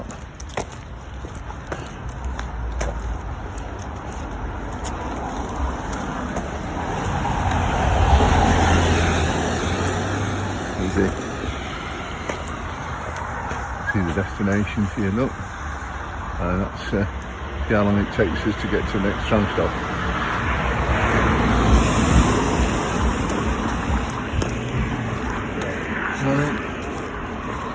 See the destination here, look. That's see how long it takes us to get to the next tram stop.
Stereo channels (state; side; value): identical; both; correlation 1.00